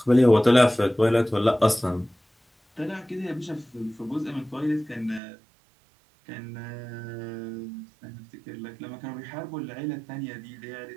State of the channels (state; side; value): drops out; left; at 5.2 s